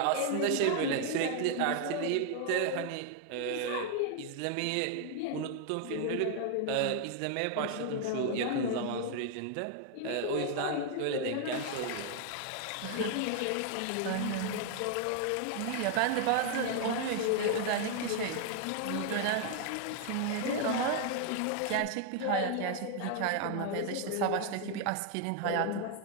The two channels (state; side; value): different; both; correlation 0.00